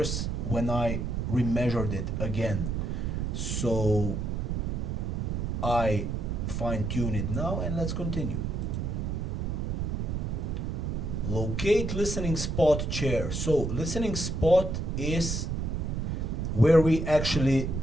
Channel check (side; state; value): right; noise; rumble, 1 dB below the sound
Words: when I remeasured it again. So I fine-tune it now, and let's continue. Locate listening spot chair. So listening spot is where we actually